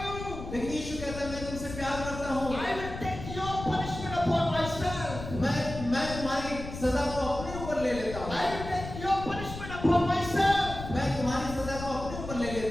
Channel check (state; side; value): noise; left; rumble, 9 dB below the sound